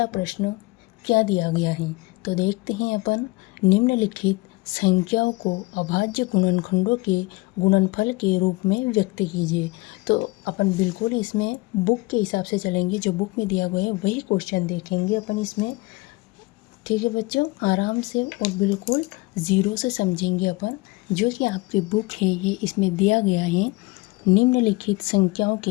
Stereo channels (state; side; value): quieter; right; 23.1 dB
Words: प्रश्न क्या दिया गया है, तो देखते हैं अपन। निम्नलिखित संख्याओं को अभाज्य गुणनखंडों के गुणनफल के रूप में व्यक्त कीजिए। तो अपन बिल्कुल इसमें बुक के हिसाब से चलेंगे, जो बुक में दिया गया है वही क्वेश्चन देखेंगे अपन इसमें। ठीक है बच्चों, आराम से और बिल्कुल ज़ीरो से समझेंगे अपन। जो कि आपकी बुक है ये इसमें दिया गया है, निम्नलिखित संख्याओं के